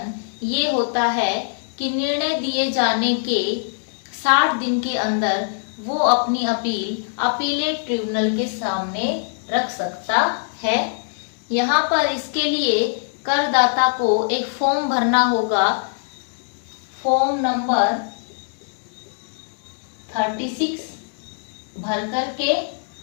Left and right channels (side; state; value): right; silent; digital silence